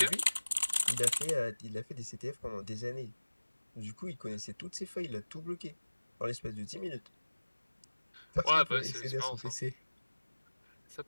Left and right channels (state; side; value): inverted; both; correlation -1.00